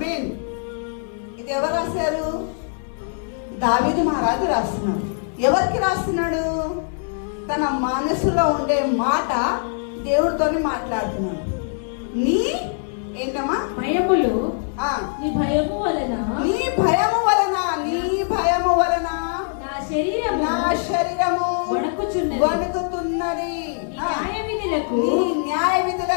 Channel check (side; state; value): right; silent; digital silence